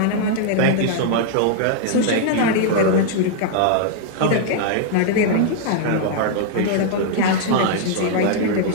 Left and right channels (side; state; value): both; different; correlation -0.01